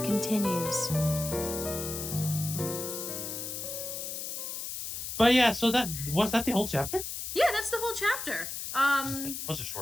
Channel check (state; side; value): noise; left; hiss, 6 dB below the sound